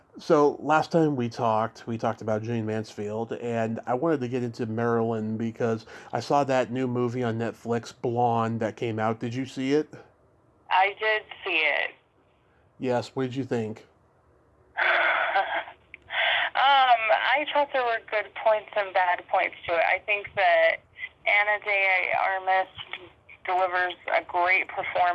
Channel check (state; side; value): identical; both; correlation 1.00